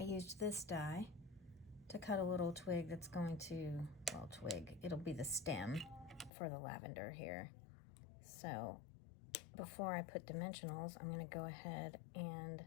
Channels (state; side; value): drops out; right; at 6.3 s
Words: this die to cut a little twig that's going to, well, twig, it'll be the stem for the lavender here. So before I put dimensionals, I'm going to go ahead and